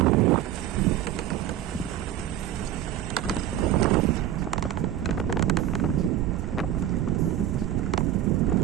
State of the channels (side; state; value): left; quieter; 11.5 dB